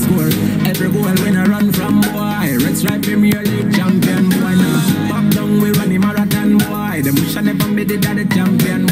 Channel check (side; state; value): both; identical; correlation 1.00